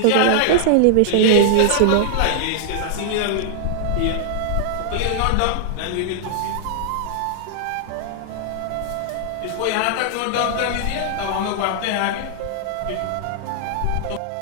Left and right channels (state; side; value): different; both; correlation -0.01